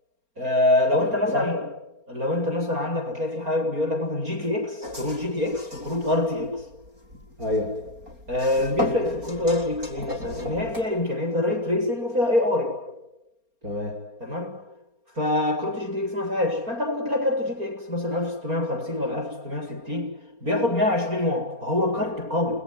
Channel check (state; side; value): late; left; 4.3 ms